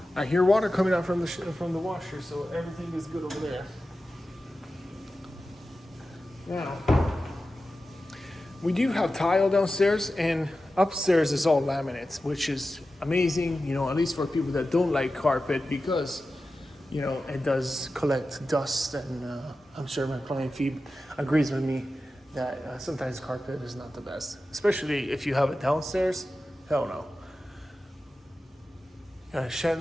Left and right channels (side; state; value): both; normal; correlation 0.93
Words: I hear water coming out from the washer, so everything is good over there. Now, we do have tile downstairs, and upstairs is all laminates, which is amazing, at least for people that don't like carpet, because, it does collect dust, and I'm sure my client Phoebe agrees with me that sometimes carpet is not the best, especially if you have it downstairs. Hell no. Got a